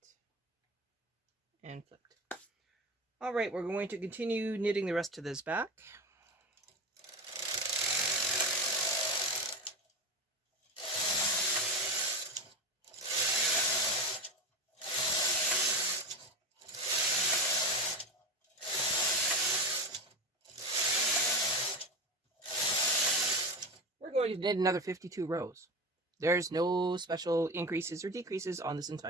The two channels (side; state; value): both; normal; correlation 0.23